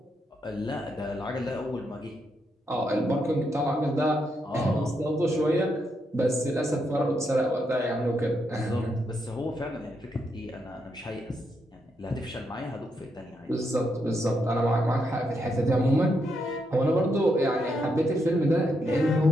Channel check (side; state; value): both; normal; correlation 0.80